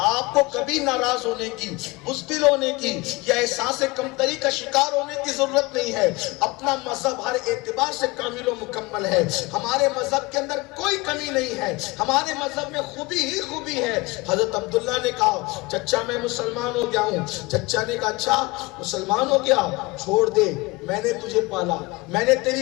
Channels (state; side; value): quieter; right; 23.5 dB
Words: آپ کو کبھی ناراض ہونے کی، بزدل ہونے کی یا احساس کمتری کا شکار ہونے کی ضرورت نہیں ہے۔ اپنا مذہب ہر اعتبار سے کامل و مکمل ہے، ہمارے مذہب کے اندر کوئی کمی نہیں ہے، ہمارے مذہب میں خوبی ہی خوبی ہے۔ حضرت عبداللہ نے کہا چچا میں مسلمان ہو گیا ہوں۔ چچا نے کہا اچھا مسلمان ہو گیا، چھوڑ دے، میں نے تجھے پالا، میں نے